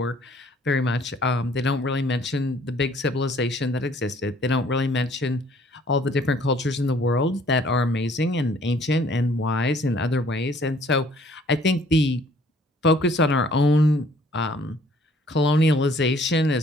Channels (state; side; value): normal; both; correlation 0.59